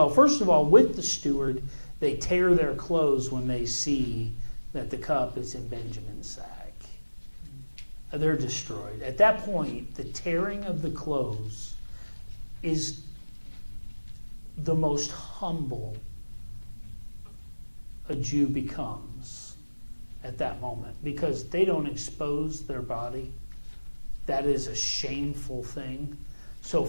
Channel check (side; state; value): both; inverted; correlation -1.00